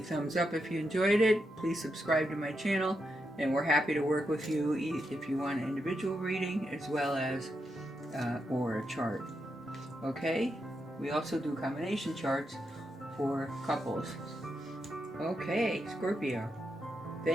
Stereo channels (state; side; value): normal; both; correlation 0.84